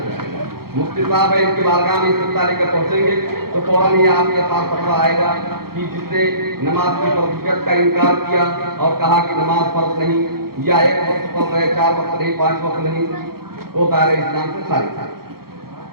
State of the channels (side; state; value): left; late; 0.94 ms